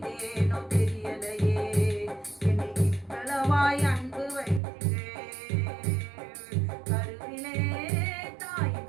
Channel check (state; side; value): drops out; left; at 4.6 s